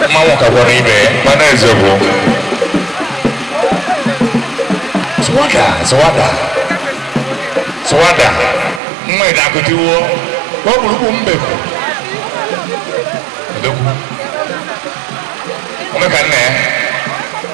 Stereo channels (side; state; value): left; drops out; at 8.8 s